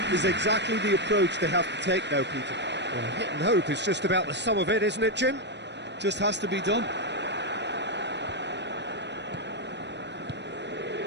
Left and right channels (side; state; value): left; late; 0.51 ms